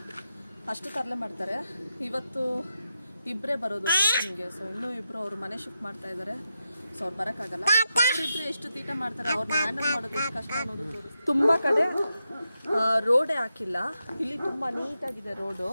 ಅಷ್ಟು ತರಲೆ ಮಾಡ್ತಾರೆ. ಇವತ್ತು ಇಬ್ಬರೇ ಬರೋದು ಟ್ಯೂಷನ್ಗೆ. ಸೊ ಇನ್ನೂ ಇಬ್ಬರು ಅವ್ರ ಮನೆ ಶಿಫ್ಟ್ ಮಾಡ್ತಾ ಇದ್ದಾರೆ. ಸೊ ಅವ್ರು ಬರೋಕ್ಕಾಗಲ್ಲ. ಅವರಿಬ್ಬರು ಎಷ್ಟು ತೀಟ ಮಾಡ್ತಾರೆ, ಅವ್ರನ್ನ ಹ್ಯಾಂಡಲ್ ಮಾಡೋದು ಎಷ್ಟು ಕಷ್ಟ ಅನ್ನೋದು ತೋರಿಸ್ತೀನಿ. ತುಂಬ ಕಡೆ ರೋಡೇ ಹಾಕಿಲ್ಲ. ಇಲ್ಲಿ ತುಂಬ ನೀಟಾಗಿದೆ ರೋಡು.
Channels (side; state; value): both; inverted; correlation -0.87